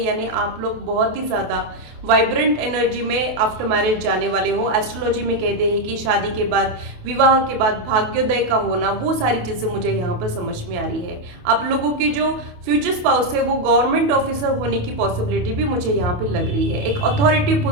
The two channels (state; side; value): late; left; 28 ms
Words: आप लोग बहुत ही ज्यादा वाइब्रेंट एनर्जी में आफ्टर मैरिज जाने वाले हो। एस्ट्रोलॉजी में कहते हैं कि शादी के बाद, विवाह के बाद भाग्योदय का होना, वो सारी चीजें मुझे यहाँ पर समझ में आ रही है। आप लोगों के जो फ्यूचर स्पाउस है वो गवर्नमेंट ऑफिसर होने की पॉसिबिलिटी भी मुझे यहाँ पे लग रही है। एक अथॉरिटी